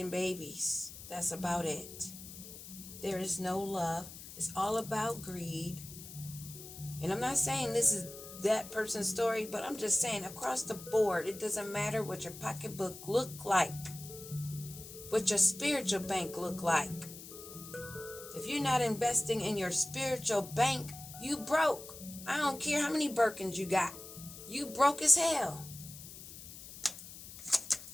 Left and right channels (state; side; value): noise; left; hiss, 14 dB below the sound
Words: babies. That's about it. There is no love. It's all about greed. And I'm not saying this is that person's story, but I'm just saying across the board, it doesn't matter what your pocketbook look like, what your spiritual bank look like. If you're not investing in your spiritual bank, you broke. I don't care how many Birkins you got. You broke as hell.